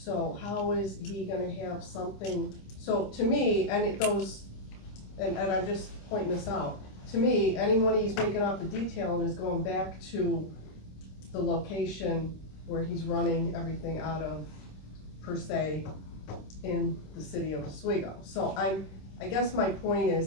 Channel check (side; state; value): right; late; 26 ms